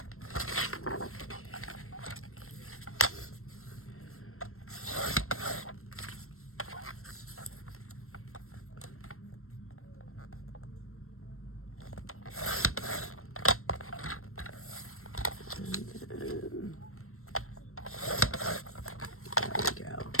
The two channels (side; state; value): right; late; 0.63 ms